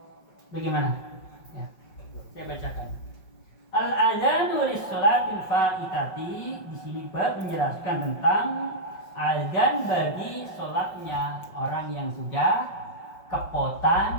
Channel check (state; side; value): late; right; 5.3 ms